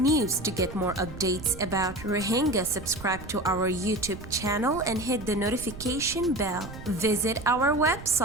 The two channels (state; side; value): noise; right; rumble, 13 dB below the sound